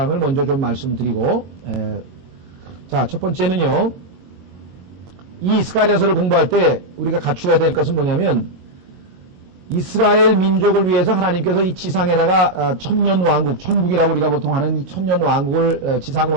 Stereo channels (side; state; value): left; late; 22 ms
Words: 먼저 좀 말씀드리고 자, 첫 번째는요. 이 스가랴서를 공부할 때 우리가 갖추어야 될 것은 뭐냐면 이스라엘 민족을 위해서 하나님께서 이 지상에다가 천년왕국, 천국이라고 우리가 보통 하는 이 천년왕국을